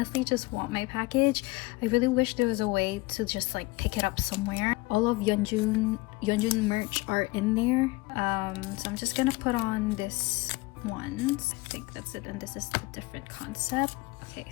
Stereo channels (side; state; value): right; quieter; 22.2 dB